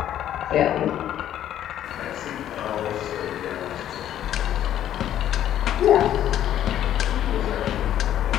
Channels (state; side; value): quieter; right; 11.3 dB